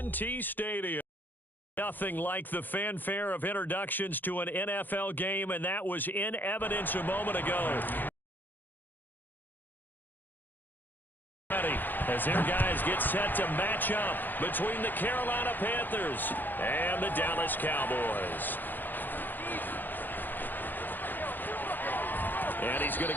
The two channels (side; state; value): right; late; 0.089 ms